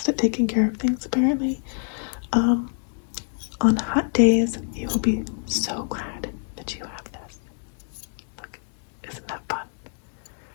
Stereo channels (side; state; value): right; silent; 61 dB below the other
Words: at taking care of things apparently. On hot days, you will be so glad that you have this. Look, isn't that fun?